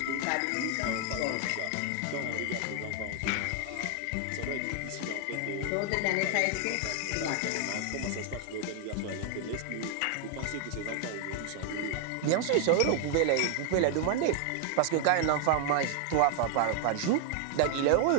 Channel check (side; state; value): both; different; correlation 0.00